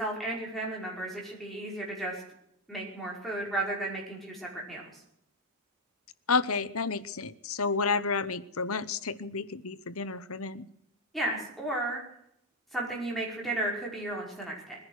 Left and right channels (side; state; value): both; normal; correlation 0.00